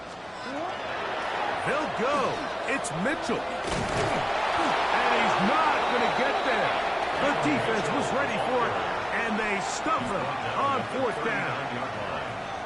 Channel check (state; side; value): identical; both; correlation 1.00